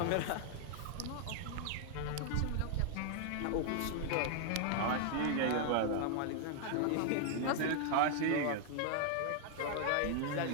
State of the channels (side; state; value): both; different; correlation 0.00